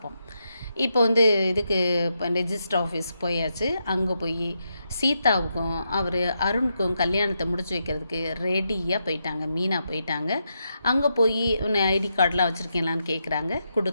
இப்போ இதுக்கு ரெஜிஸ்டர் ஆஃபீஸ் போயாச்சு. அங்கே போய் சீதாவுக்கும் அருணுக்கும் கல்யாணத்தை முடிச்சு வைக்கிறதுக்கு ரெடியாக போயிட்டாங்க. மீனா போயிட்டாங்க. அங்கே போய் ஐடி கார்டெலாம் வச்சுருக்கீங்களான்னு கேட்குறாங்க,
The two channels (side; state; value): both; inverted; correlation -0.83